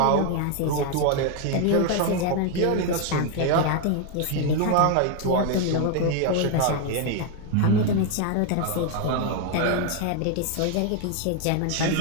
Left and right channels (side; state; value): both; different; correlation 0.01